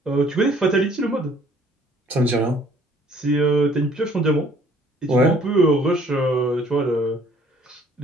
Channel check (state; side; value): normal; both; correlation 0.58